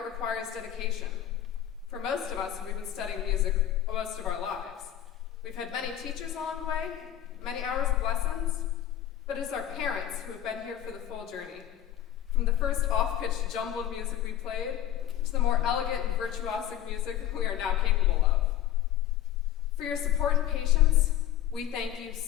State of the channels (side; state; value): right; quieter; 11.6 dB